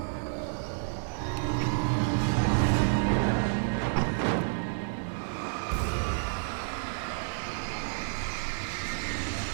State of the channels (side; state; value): left; silent; digital silence